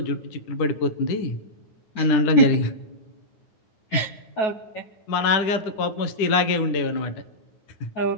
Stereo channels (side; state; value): right; late; 10 ms